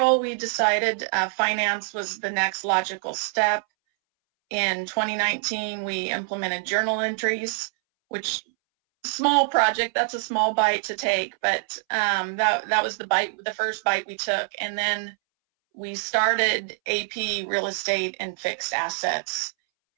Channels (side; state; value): left; silent; 62 dB below the other